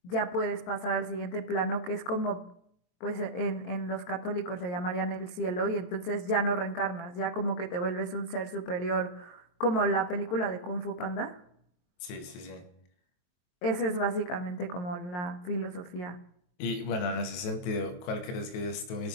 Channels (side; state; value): right; late; 23 ms